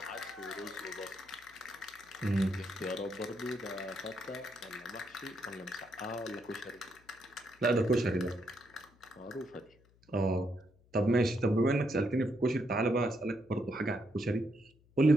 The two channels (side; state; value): left; noise; hum, 30 dB below the sound